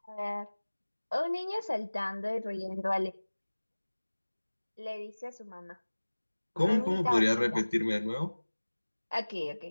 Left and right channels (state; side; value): inverted; both; correlation -1.00